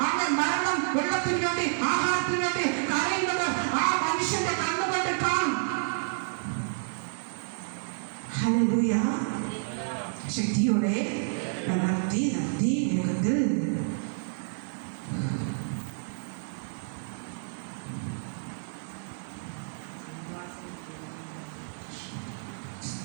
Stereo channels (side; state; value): left; silent; digital silence